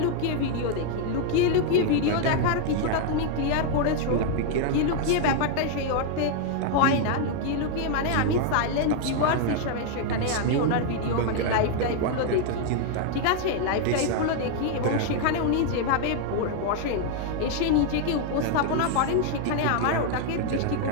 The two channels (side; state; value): both; different; correlation 0.00